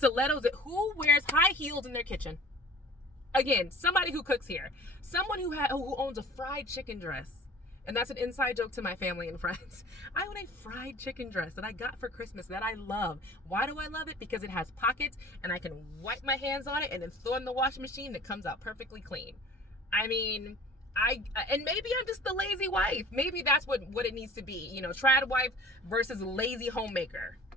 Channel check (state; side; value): normal; both; correlation 0.45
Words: Who wears high heels in their kitchen? Again, somebody who cooks here. Someone who owns a fried chicken dress. And that's an inside joke to my family and friends. I own a fried chicken dress that I got for Christmas that I love. Why do I love it? Because it has pockets and I can wipe my hands on it and then throw it in the washing machine and it comes out perfectly clean. I mean, and maybe I'm just the lazy wife. Maybe that's what it needs to be. Trad wife versus lazy homemaker.